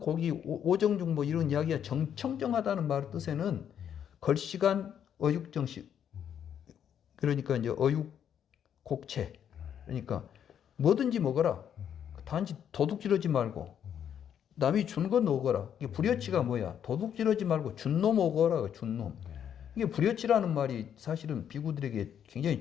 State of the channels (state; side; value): quieter; right; 9.0 dB